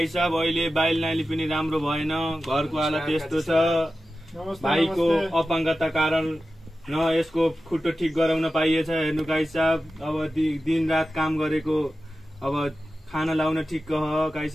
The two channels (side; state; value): both; normal; correlation 0.93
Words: साहब, अहिले बाइल नाली पनि राम्रो भएन, घरको हालत यस्तो छ। भाइको अपाङ्गता कारण न यसको खुट्टो ठिक गराउन पाइएछ। हेर्नु काई साहब, अब दिन रात काम गरेको, अब खाना लाउन ठिक हो। काई